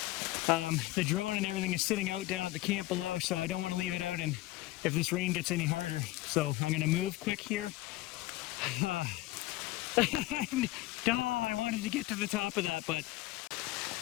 The drone and everything is sitting out down at the camp below, so I don't want to leave it out and if this rain gets any harder. So I'm gonna move quick here. I wanted to get to the top of that, but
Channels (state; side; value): quieter; right; 18.2 dB